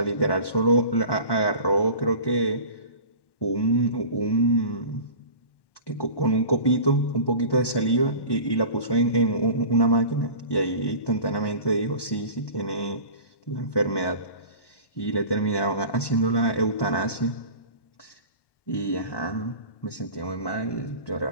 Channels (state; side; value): late; right; 1.1 ms